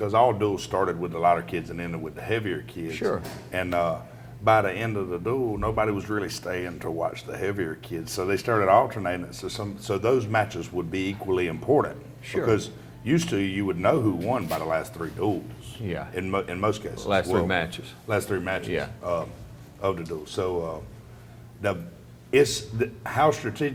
all duels started with the lighter kids and ended with the heavier kids. Sure. And by the end of the duel, nobody was really staying to watch the heavier kids. So they started alternating it so those matches would be equally important. Sure. Because used to, you would know who won by the last 3 duels. Yeah. In most cases. Last 3 matches. Last 3 matches. Yeah. Of the duel. So how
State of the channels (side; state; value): both; identical; correlation 1.00